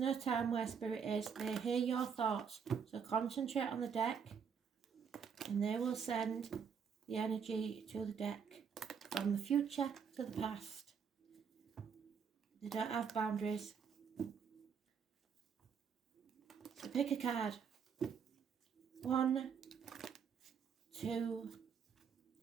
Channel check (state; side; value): quieter; left; 6.8 dB